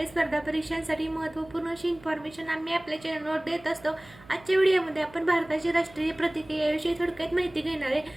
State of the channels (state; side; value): noise; right; hum, 23 dB below the sound